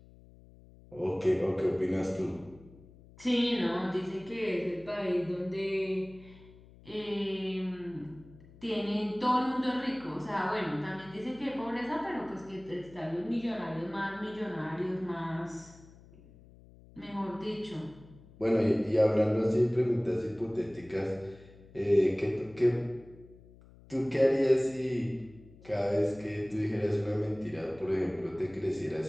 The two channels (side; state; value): left; noise; hum, 23 dB below the sound